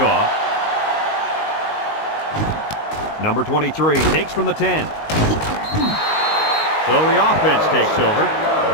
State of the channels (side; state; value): right; late; 19 ms